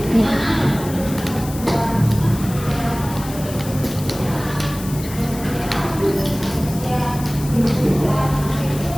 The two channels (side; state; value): left; noise; hiss, 14 dB below the sound